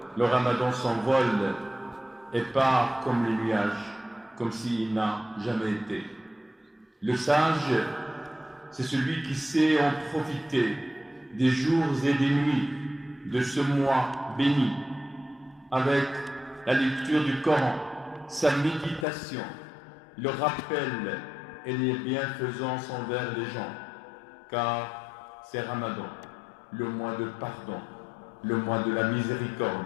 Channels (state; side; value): drops out; right; at 19.1 s